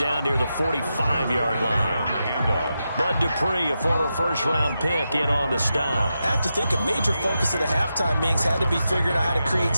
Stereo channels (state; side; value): inverted; both; correlation -0.88